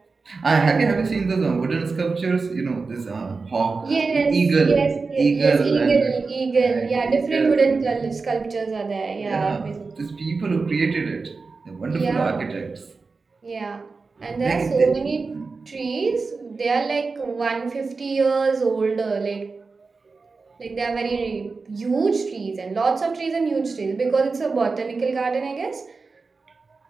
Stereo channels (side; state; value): left; quieter; 4.3 dB